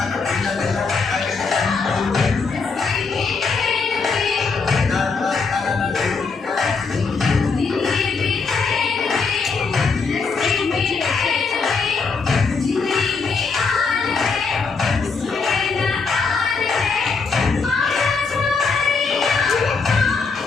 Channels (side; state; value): right; quieter; 4.8 dB